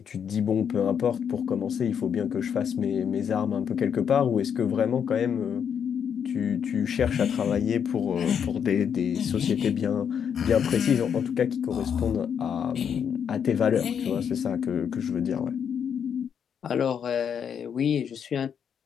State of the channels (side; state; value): right; quieter; 7.8 dB